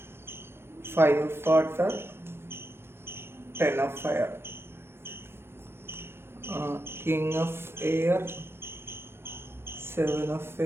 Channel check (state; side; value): late; left; 0.12 ms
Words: Five of Water, Ten of Fire, King of Air, Seven of